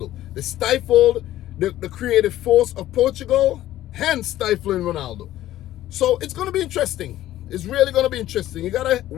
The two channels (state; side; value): quieter; right; 14.0 dB